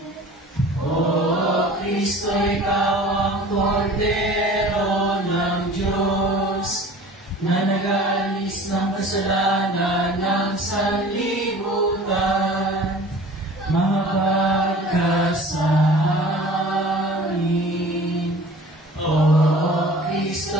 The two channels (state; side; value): normal; both; correlation 0.44